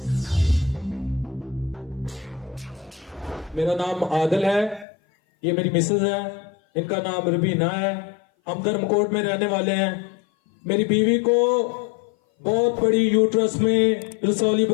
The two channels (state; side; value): drops out; right; at 4.9 s